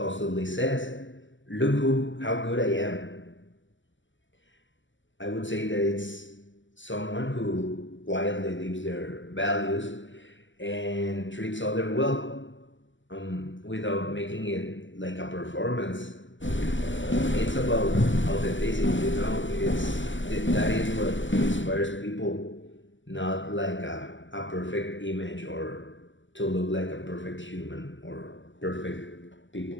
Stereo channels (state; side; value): late; right; 0.55 ms